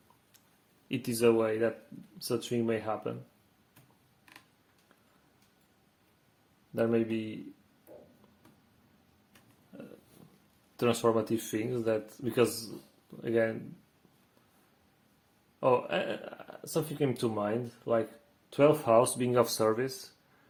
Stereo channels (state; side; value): identical; both; correlation 1.00